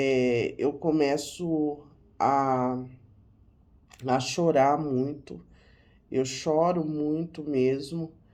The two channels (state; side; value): identical; both; correlation 1.00